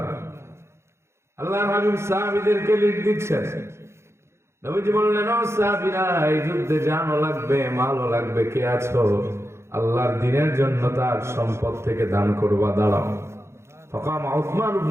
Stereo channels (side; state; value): left; late; 0.13 ms